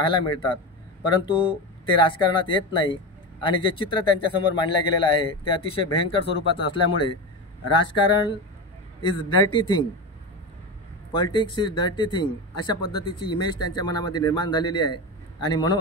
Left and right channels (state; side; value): normal; both; correlation 0.21